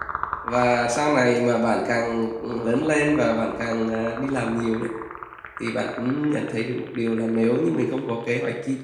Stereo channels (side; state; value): both; identical; correlation 1.00